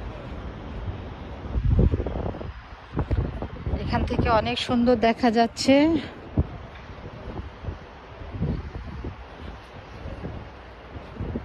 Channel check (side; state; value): both; identical; correlation 1.00